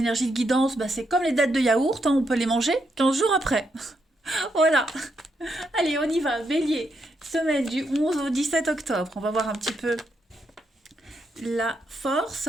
de guidance, c'est comme les dattes de yaourt, hein, on peut les manger 15 jours après. Voilà, allez on y va, bélier, semaine du 11 au 17 octobre, on va voir un petit peu la force.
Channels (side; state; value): both; normal; correlation 0.80